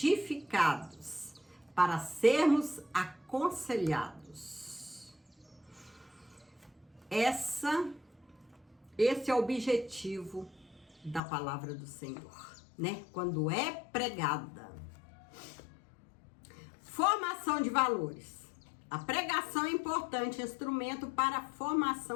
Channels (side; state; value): right; drops out; at 11.2 s